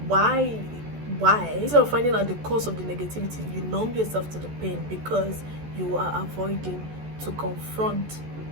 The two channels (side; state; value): left; late; 14 ms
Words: why, instead of finding out the cause of the negativity, you numb yourself to the pain because you are avoiding to confront